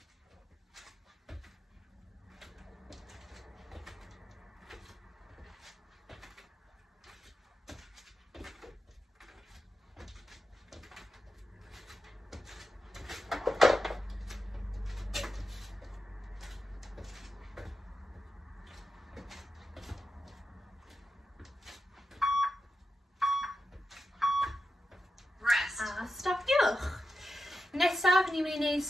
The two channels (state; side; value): normal; both; correlation 0.90